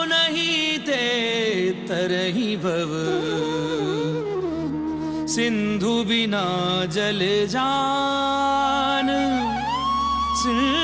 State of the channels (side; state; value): both; identical; correlation 1.00